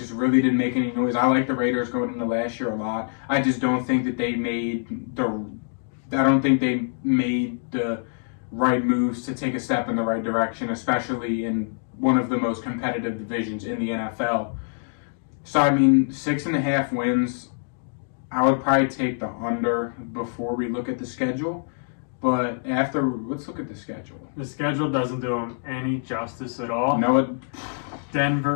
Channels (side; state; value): right; silent; digital silence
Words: really didn't make any noise. I like the Raiders going into last year a lot. I just don't think that they made the right moves to take a step in the right direction, especially in one of the most competitive divisions in the NFL. So, I mean, 6.5 wins, I would probably take the under before we look at the schedule. But let's look at the schedule. The schedule doesn't do them any justice at all. No,